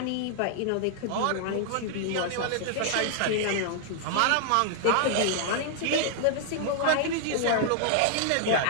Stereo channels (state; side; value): different; both; correlation 0.00